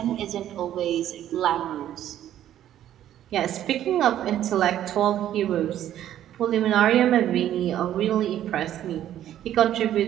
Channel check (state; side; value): quieter; left; 11.7 dB